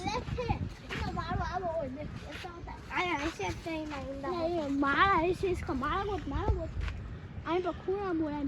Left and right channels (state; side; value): identical; both; correlation 1.00